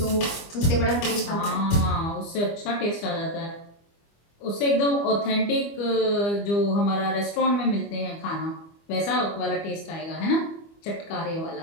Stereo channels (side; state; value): right; late; 25 ms